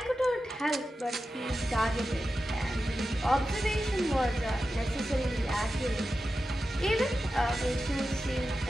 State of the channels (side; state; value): both; normal; correlation 0.92